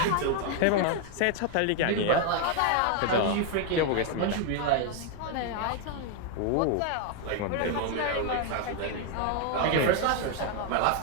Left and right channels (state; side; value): different; both; correlation 0.01